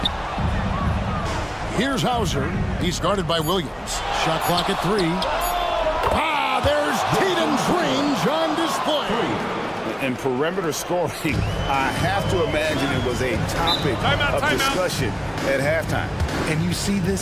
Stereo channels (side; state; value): both; identical; correlation 1.00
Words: Here's Hauser. He's guarded by Williams. Shot clock at 3. There's Tatum's range on display. And perimeter scoring, I have to imagine it was a topic of discussion at halftime. And you see this